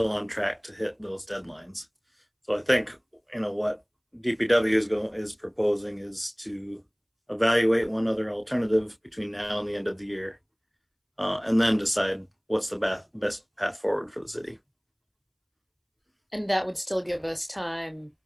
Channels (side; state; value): both; identical; correlation 1.00